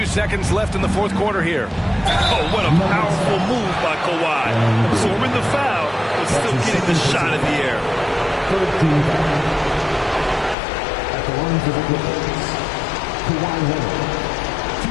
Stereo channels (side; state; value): right; drops out; at 10.6 s